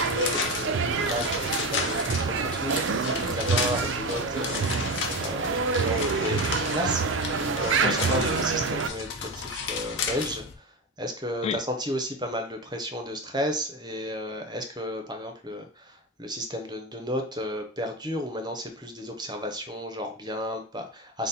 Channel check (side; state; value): both; normal; correlation 0.20